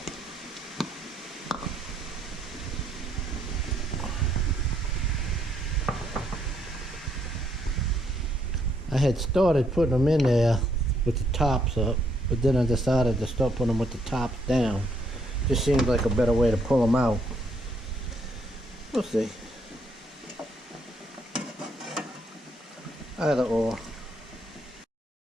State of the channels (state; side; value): normal; both; correlation 0.72